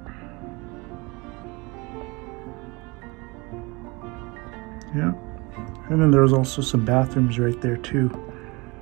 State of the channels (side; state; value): left; quieter; 26.2 dB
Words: Yeah, and then there was also some bathrooms right there too.